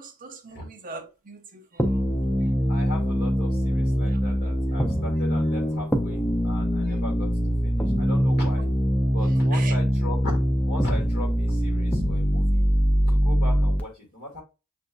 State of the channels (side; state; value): both; normal; correlation 0.95